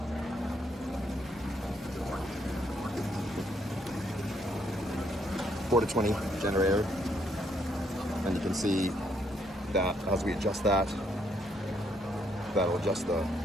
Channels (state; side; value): normal; both; correlation 0.72